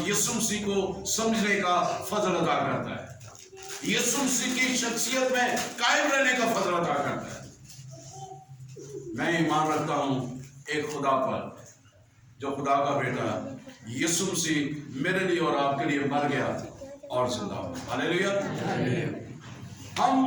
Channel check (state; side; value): identical; both; correlation 1.00